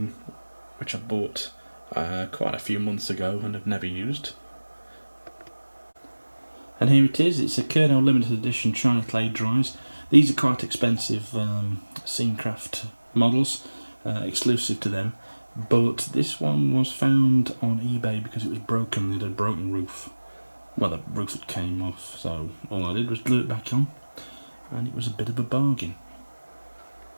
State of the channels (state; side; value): inverted; both; correlation -1.00